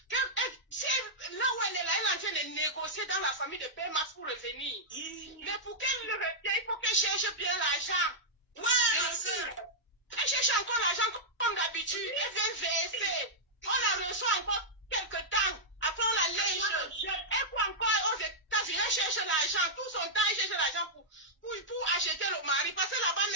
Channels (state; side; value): normal; both; correlation -0.08